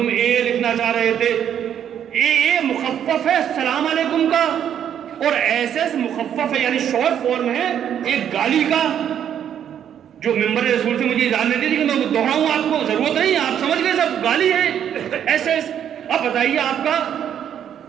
اے لکھنا چاہ رہے تھے۔ اے مخفف ہے السلام علیکم کا، اور ایس ایس مخفف ہے یعنی شارٹ فارم ہے ایک گالی کا، جو ممبر رسول سے مجھے اجازت نہیں دی کہ میں دوہراؤں، آپ کو ضرورت نہیں، آپ سمجھ گئے سب گالی ہے ایس ایس۔ اب بتائیے آپ کا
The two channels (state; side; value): quieter; left; 9.4 dB